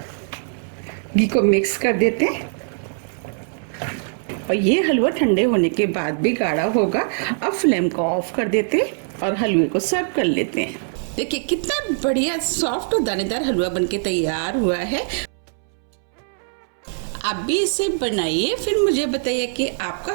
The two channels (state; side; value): silent; left; 64 dB below the other